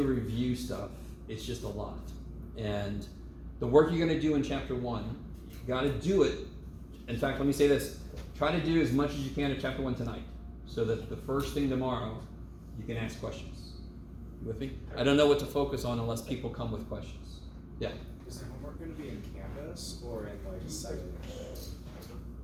review stuff, it's just a lot. And the work you're gonna do in chapter 1, you gotta do it. In fact, let me say this, try to do as much as you can in chapter 1 tonight, so that the first thing tomorrow, you can ask questions. You with me? I don't know what to focus on unless people come with questions. Yeah? Is the homework going to be in Canvas or in like Cipher?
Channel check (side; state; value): both; identical; correlation 1.00